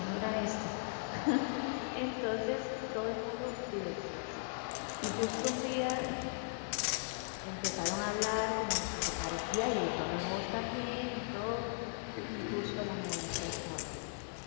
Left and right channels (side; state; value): right; silent; digital silence